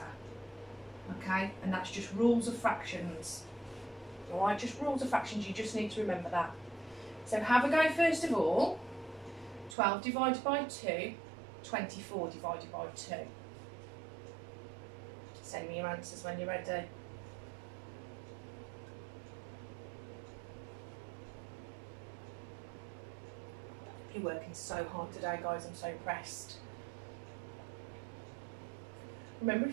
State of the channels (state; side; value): drops out; left; at 9.8 s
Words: Okay? And that's just rules of fractions. Alright, just rules of fractions. You just need to remember that. So have a go first of all. 12 divided by 2, 24 divided by 2. Send me your answers when you're ready. You're working so hard today, guys. I'm so impressed. Remember, if